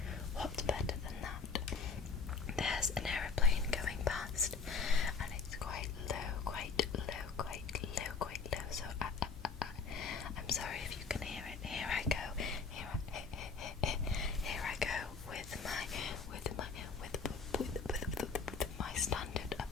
What's better than that? There's an aeroplane going past, and it's quite low, so I'm sorry if you can hear it. Here I go with my standard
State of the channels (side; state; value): right; quieter; 5.2 dB